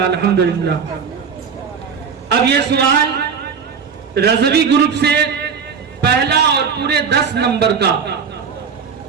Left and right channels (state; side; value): quieter; left; 6.2 dB